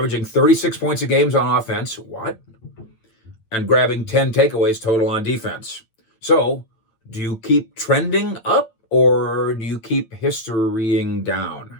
36 points a game on offense. What? And grabbing 10 takeaways total on defense. So, do you keep trending up or do you keep historying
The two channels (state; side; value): late; right; 9.0 ms